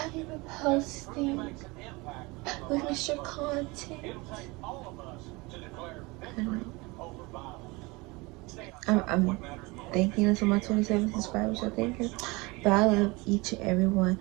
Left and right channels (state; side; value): quieter; left; 24.6 dB